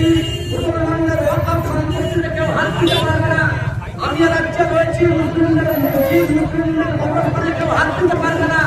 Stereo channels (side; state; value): both; identical; correlation 1.00